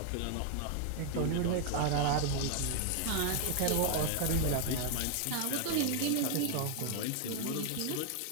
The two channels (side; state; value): both; different; correlation 0.00